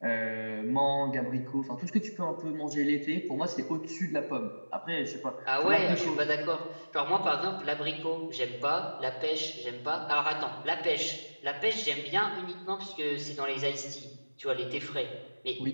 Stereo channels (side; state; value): both; inverted; correlation -1.00